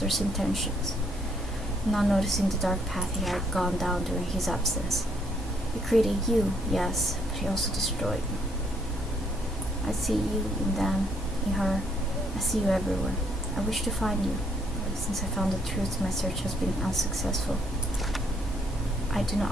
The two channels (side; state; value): both; normal; correlation 0.70